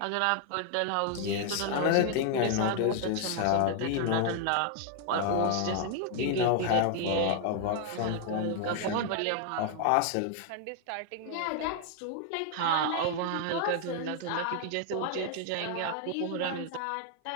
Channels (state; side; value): different; both; correlation 0.00